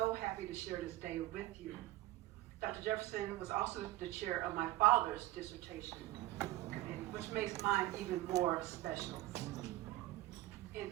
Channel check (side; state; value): left; quieter; 16.5 dB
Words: happy to share this day with you. Dr. Jefferson was also the chair of my father's dissertation committee, which makes mine even more special. In